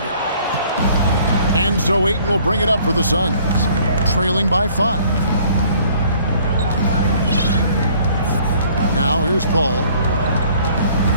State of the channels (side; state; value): both; inverted; correlation -0.57